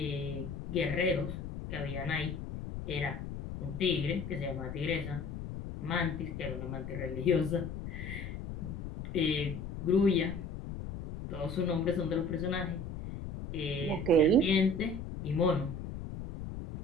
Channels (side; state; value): left; noise; rumble, 7 dB below the sound